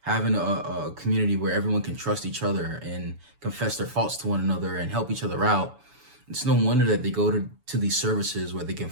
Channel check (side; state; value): left; late; 7.0 ms